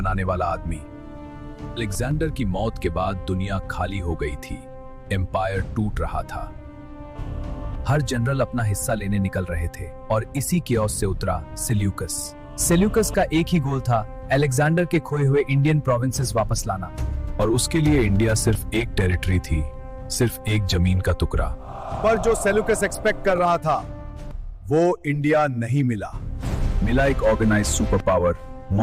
वाला आदमी। अलेक्जेंडर की मौत के बाद दुनिया खाली हो गई थी, एम्पायर टूट रहा था। हर जनरल अपना हिस्सा लेने निकल रहे थे और इसी कियोस से उतरा सेल्यूकस। सेल्यूकस का एक ही गोल था, अलेक्जेंडर के खोए हुए इंडियन प्रोविंसेस वापस लाना। और उसके लिए इंडिया सिर्फ एक टेरिटरी थी, सिर्फ एक जमीन का टुकड़ा। पर जो सेल्यूकस एक्सपेक्ट कर रहा था वो इंडिया नहीं मिला। मिला एक organized super power,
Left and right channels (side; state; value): both; identical; correlation 1.00